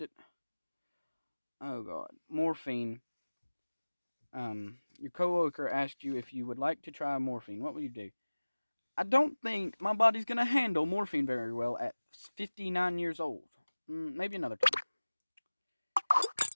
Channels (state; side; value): inverted; both; correlation -1.00